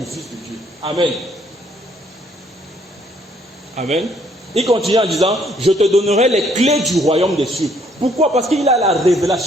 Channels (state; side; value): normal; both; correlation 0.66